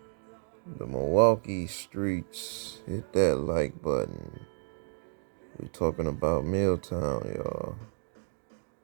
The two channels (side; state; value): left; silent; 57 dB below the other